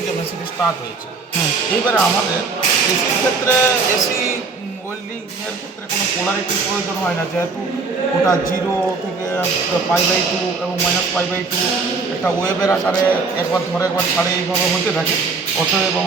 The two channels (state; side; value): quieter; left; 4.3 dB